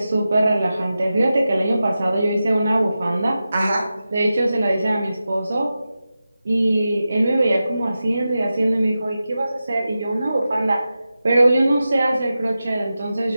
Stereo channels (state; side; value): inverted; both; correlation -0.92